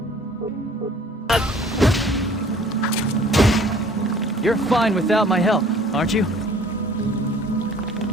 You're fine without my help, aren't you?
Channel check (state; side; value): normal; both; correlation 0.52